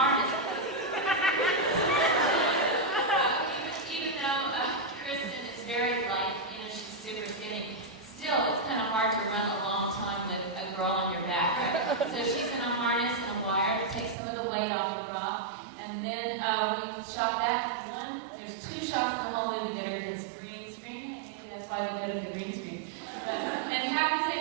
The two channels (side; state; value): left; drops out; at 14.2 s